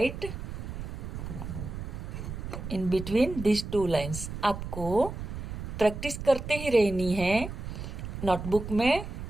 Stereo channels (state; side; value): noise; right; rumble, 7 dB below the sound